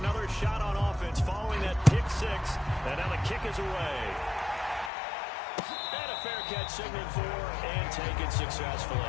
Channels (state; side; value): drops out; right; at 4.9 s